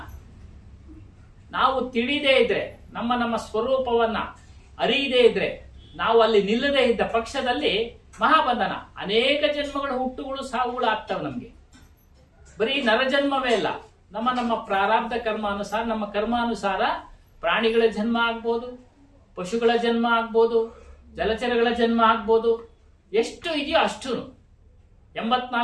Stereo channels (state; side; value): identical; both; correlation 1.00